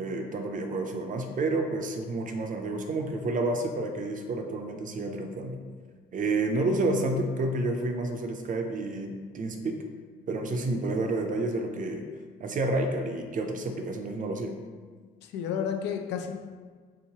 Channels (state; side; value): normal; both; correlation 0.49